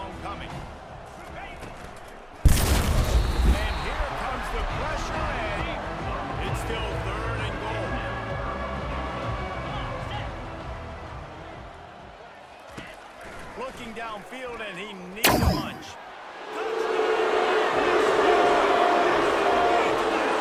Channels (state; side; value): identical; both; correlation 1.00